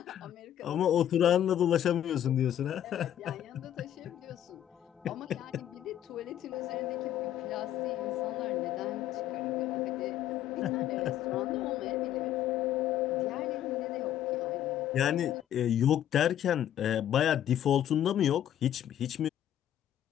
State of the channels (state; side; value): quieter; right; 11.1 dB